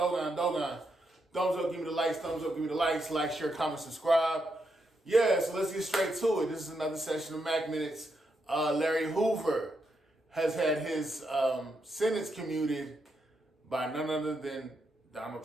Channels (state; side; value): normal; both; correlation 0.82